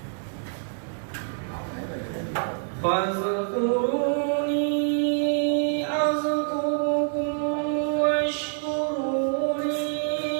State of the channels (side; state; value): left; silent; 57 dB below the other